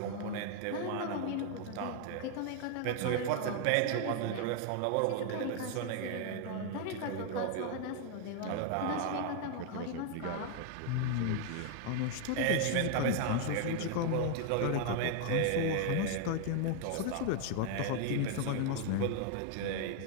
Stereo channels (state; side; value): different; both; correlation 0.00